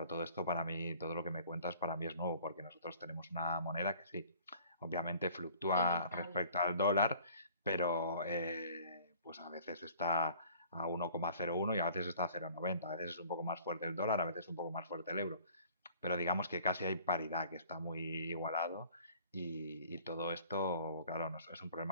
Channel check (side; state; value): both; inverted; correlation -0.53